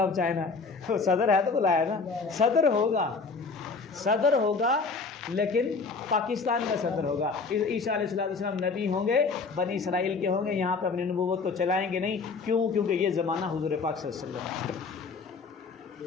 اب چائنا، صدر ہے تو بلایا نا، صدر ہوگا لیکن پاکستان کا صدر ہوگا۔ عیسیٰ علیہ السلام نبی ہوں گے، بنی اسرائیل کے ہوں گے، یہاں پہ اپنی نبوت کو چلائیں گے نہیں، کیونکہ یہ زمانہ حضور پاک صلی اللہ علیہ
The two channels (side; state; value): right; quieter; 4.6 dB